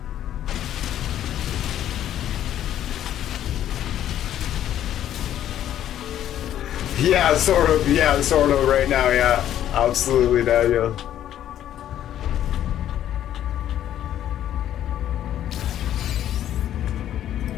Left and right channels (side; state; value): right; quieter; 11.4 dB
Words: Yeah, sort of. Yeah, sort of. Right now, yeah, absolutely, Daniel.